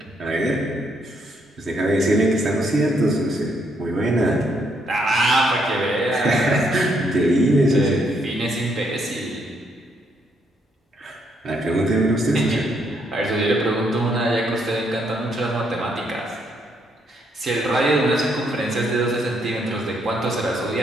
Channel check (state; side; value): normal; both; correlation 0.73